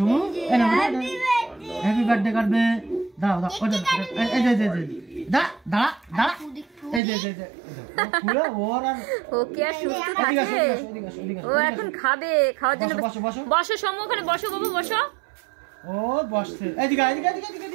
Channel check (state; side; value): drops out; left; at 7.0 s